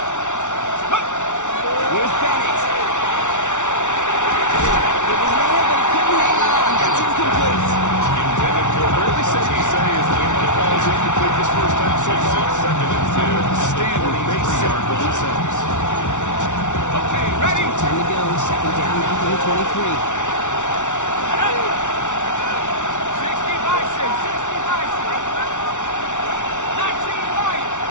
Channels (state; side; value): late; right; 0.85 ms